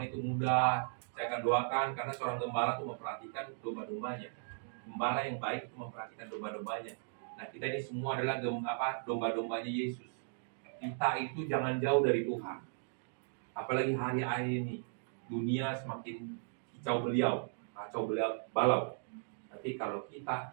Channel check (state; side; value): silent; left; digital silence